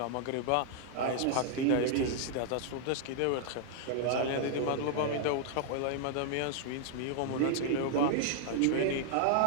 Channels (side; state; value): both; different; correlation -0.01